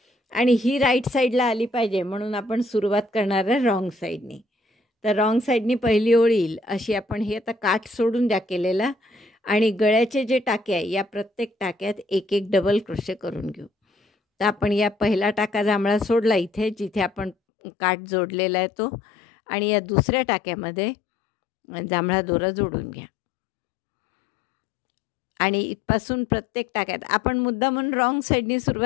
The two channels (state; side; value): drops out; right; at 17.4 s